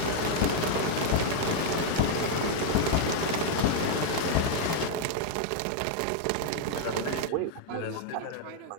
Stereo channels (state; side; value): different; both; correlation -0.01